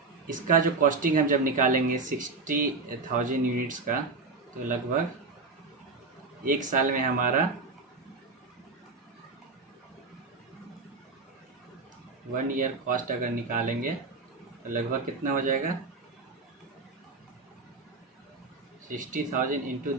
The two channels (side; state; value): left; quieter; 3.9 dB